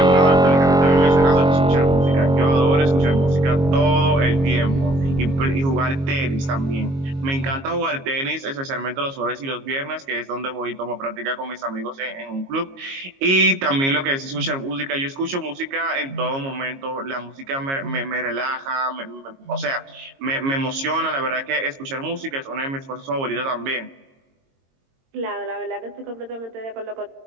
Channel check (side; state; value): left; late; 22 ms